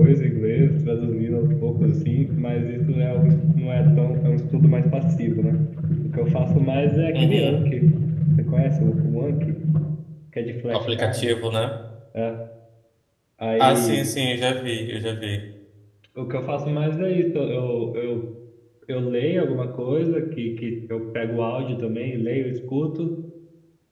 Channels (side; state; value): both; identical; correlation 1.00